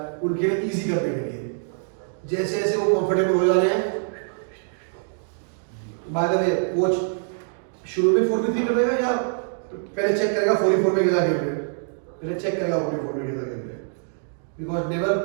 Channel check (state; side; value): silent; left; digital silence